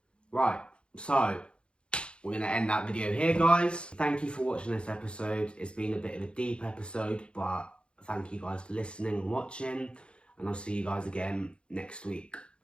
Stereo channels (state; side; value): late; right; 0.056 ms